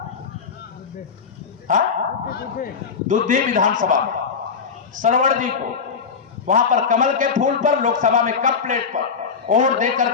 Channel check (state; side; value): quieter; right; 5.7 dB